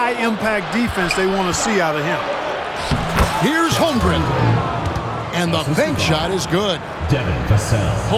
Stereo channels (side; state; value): both; identical; correlation 1.00